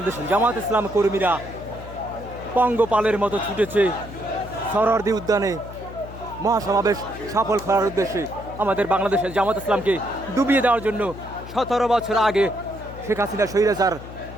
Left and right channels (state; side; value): noise; left; hum, 14 dB below the sound